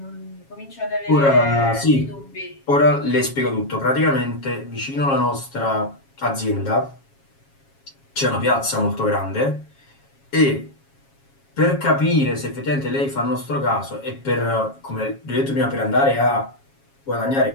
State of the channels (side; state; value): right; late; 7.3 ms